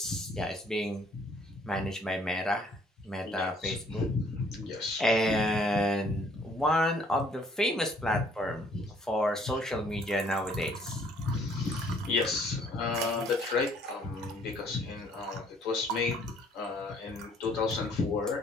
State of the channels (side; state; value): both; normal; correlation 0.62